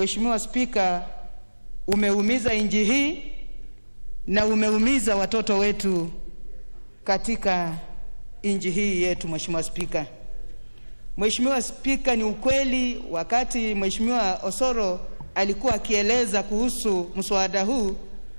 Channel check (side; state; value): both; inverted; correlation -1.00